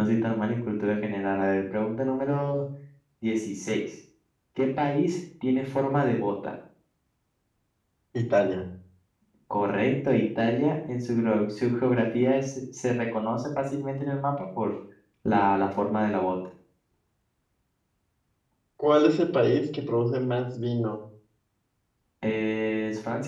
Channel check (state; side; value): identical; both; correlation 1.00